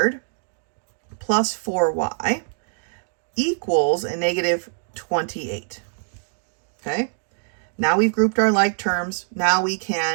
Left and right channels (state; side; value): silent; left; digital silence